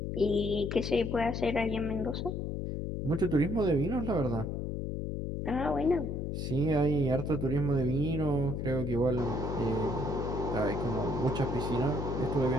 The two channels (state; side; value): noise; left; hum, 3 dB below the sound